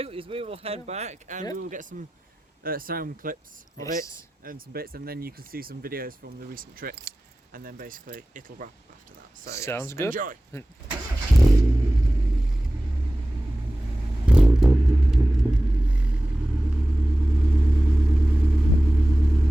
is we will head back and we will get some sound clips of it and some bits, and then you can see some videos from the recent trips, and then basically it'll wrap up after that. So sounds good. Enjoy.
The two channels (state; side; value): normal; both; correlation 0.96